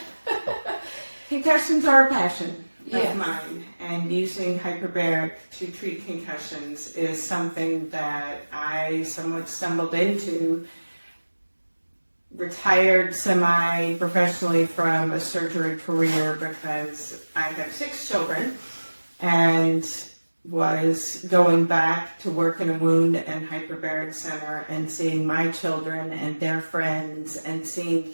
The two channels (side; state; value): both; inverted; correlation -1.00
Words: Concussions are a passion of mine, and using hyperbaric to treat concussions is something that I somewhat stumbled into. Retired semi-professionally from a surgery career because I have 6 children and was going back to work in a wound and hyperbaric center and seeing my children and their friends and seeing